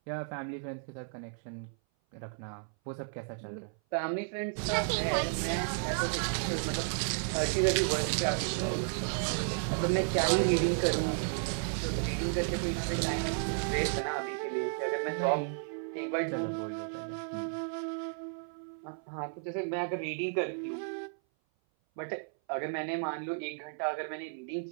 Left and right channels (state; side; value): silent; left; 56 dB below the other